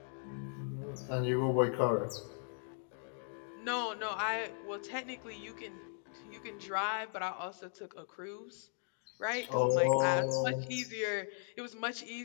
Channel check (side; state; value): right; silent; 53 dB below the other